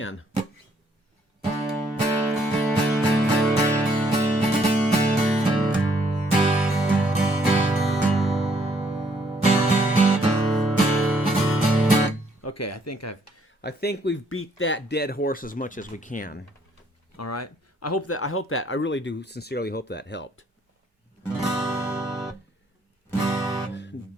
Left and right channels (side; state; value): both; normal; correlation 0.67